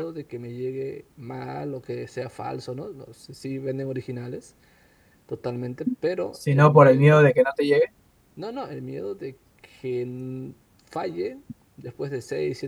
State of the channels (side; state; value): both; identical; correlation 1.00